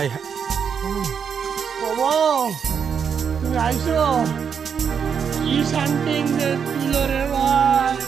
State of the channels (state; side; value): quieter; left; 7.0 dB